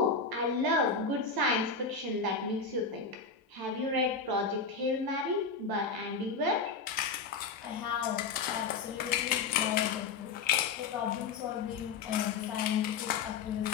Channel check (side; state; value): right; quieter; 4.9 dB